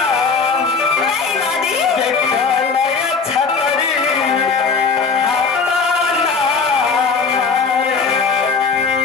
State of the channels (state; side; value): quieter; right; 5.0 dB